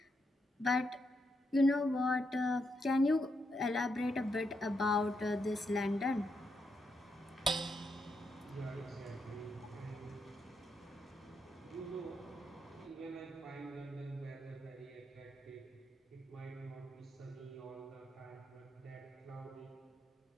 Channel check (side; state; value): both; normal; correlation 0.81